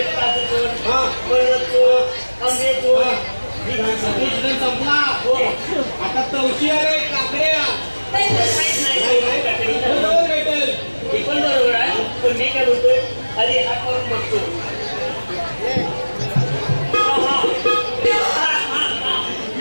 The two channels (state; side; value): inverted; both; correlation -1.00